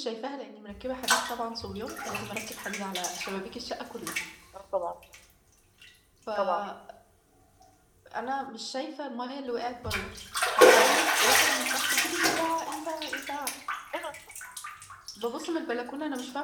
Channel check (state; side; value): identical; both; correlation 1.00